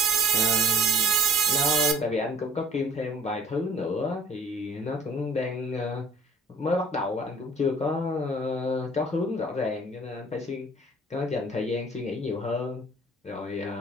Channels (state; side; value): normal; both; correlation 0.50